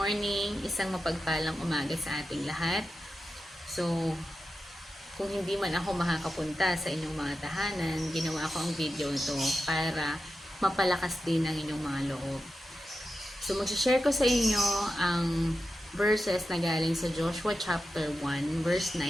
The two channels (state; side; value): normal; both; correlation 0.91